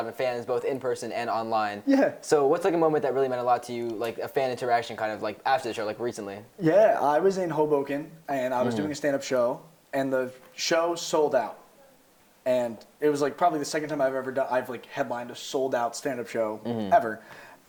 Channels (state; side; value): identical; both; correlation 1.00